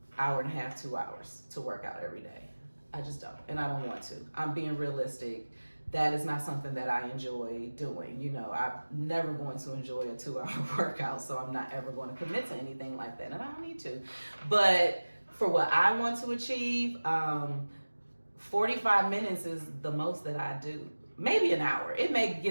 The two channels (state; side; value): inverted; both; correlation -1.00